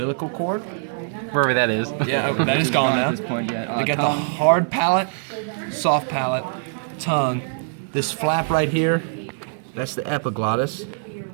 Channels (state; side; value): silent; left; digital silence